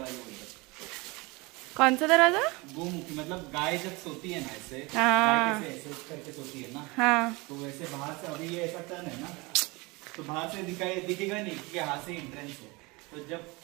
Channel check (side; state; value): left; quieter; 25.2 dB